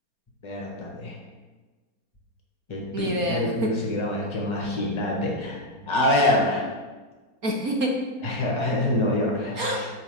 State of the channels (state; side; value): late; left; 4.3 ms